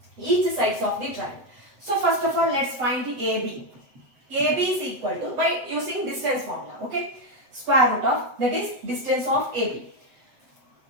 of the triangle. So first of all, let's find the AB. AB is equal to, by using distance formula, okay, square root of, that is distance of AB.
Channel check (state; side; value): late; left; 7.8 ms